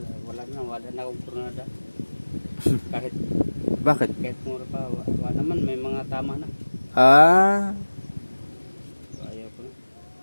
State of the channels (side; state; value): both; inverted; correlation -1.00